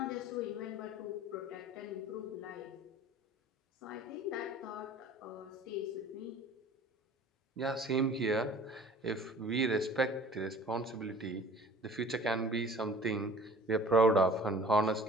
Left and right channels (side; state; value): both; normal; correlation 0.47